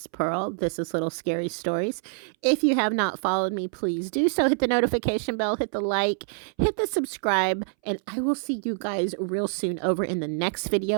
Pearl. This is Little Scary Stories. If you have not followed me, please do so. Hit the notification bell, hit the like, hit the subscribe, and I will see you guys real soon over in the next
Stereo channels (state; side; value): silent; left; 61 dB below the other